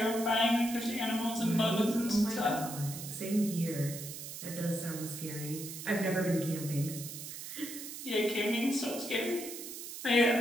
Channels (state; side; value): noise; right; hiss, 9 dB below the sound